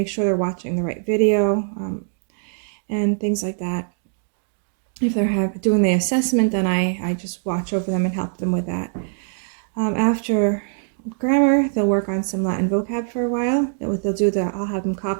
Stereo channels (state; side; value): silent; left; digital silence